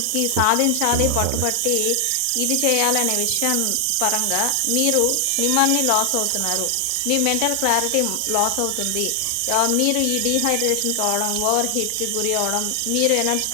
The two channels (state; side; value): different; both; correlation 0.00